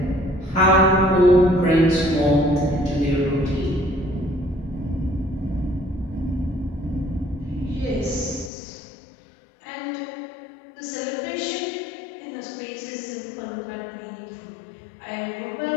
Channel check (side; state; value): right; drops out; at 8.5 s